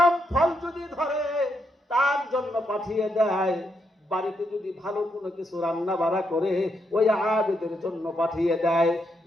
ফল যদি ধরে তার জন্য পাঠিয়ে দেয়। বাড়িতে যদি ভালো কোনো কিছু রান্না বাড়া করে ওই আবেদের জন্য পাঠিয়ে দেয়।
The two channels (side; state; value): both; normal; correlation 0.79